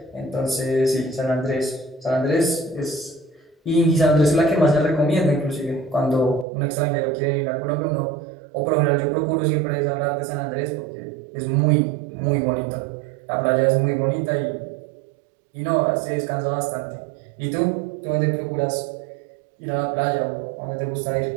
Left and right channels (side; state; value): left; drops out; at 6.5 s